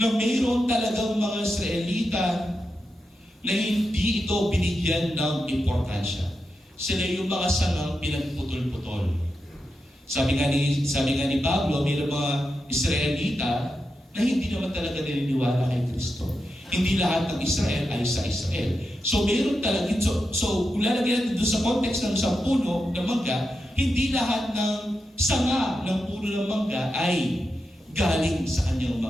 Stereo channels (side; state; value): both; normal; correlation 0.88